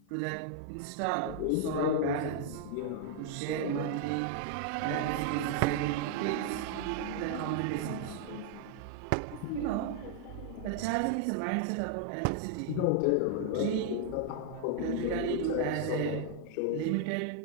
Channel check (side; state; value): both; different; correlation -0.01